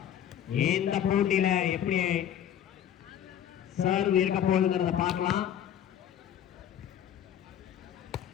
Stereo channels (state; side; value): quieter; right; 10.1 dB